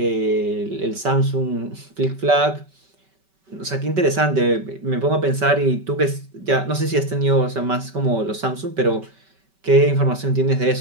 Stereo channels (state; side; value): late; left; 5.2 ms